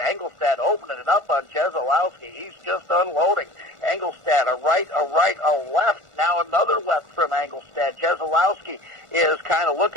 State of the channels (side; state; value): left; late; 1.5 ms